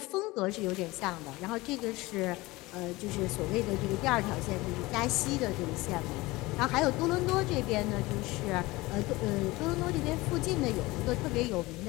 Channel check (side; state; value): right; quieter; 20.9 dB